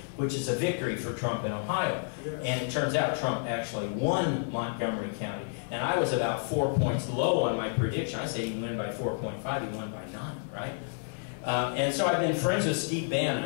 which is a victory for Trump in Ohio. And it turns out Trump actually won Montgomery County. And I was about 4 points low on my prediction. I said he won by 4.5, he won by 9, right? And so I've been friends with Steve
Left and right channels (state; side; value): silent; right; 58 dB below the other